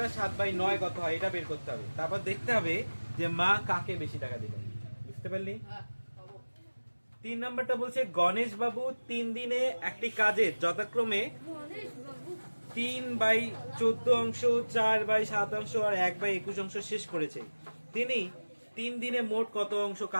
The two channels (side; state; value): both; inverted; correlation -1.00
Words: 7/9 কত হয় এটা বের করতে হবে। তারপর দেখতে হবে যে মা কাকে বেশি টাকা দিল। বুঝতে পারলি? হ্যাঁ খাবো। 3 নাম্বারটা বলছে গণেশ বাবু 3 দিনে একটি কাজের যথাক্রমে 3/14 অংশ, 4/7 অংশ আর 1/21 অংশ শেষ করেছে। তিনি 3 দিনে মোট কত অংশ